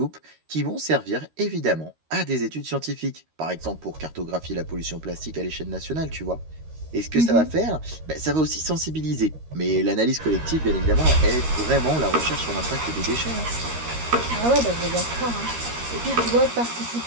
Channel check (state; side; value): late; left; 13 ms